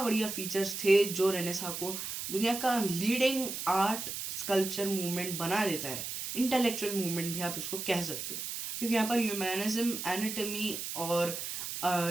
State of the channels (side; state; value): right; noise; hiss, 5 dB below the sound